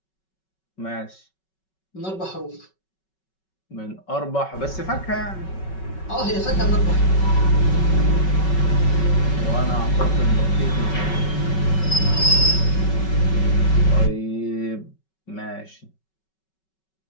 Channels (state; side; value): late; right; 5.3 ms